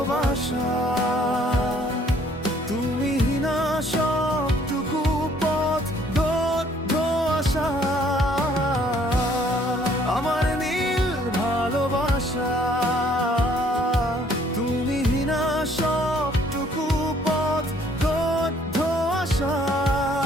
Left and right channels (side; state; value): both; normal; correlation 0.62